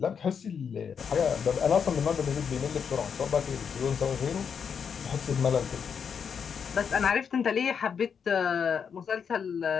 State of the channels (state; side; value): quieter; right; 6.8 dB